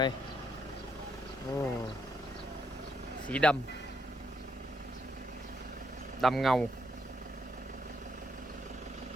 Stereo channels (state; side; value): normal; both; correlation 0.76